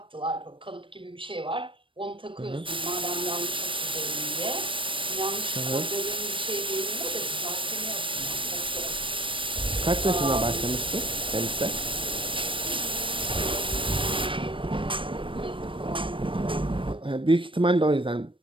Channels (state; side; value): late; left; 0.25 ms